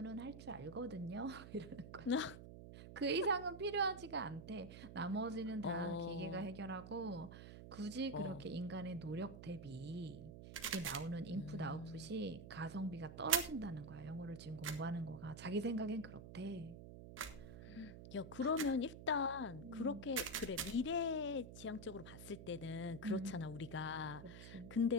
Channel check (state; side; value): noise; right; hum, 12 dB below the sound